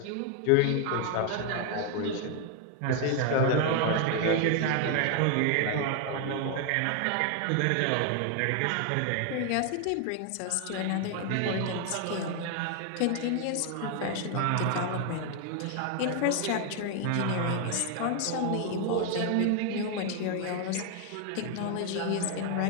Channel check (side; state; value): both; different; correlation 0.01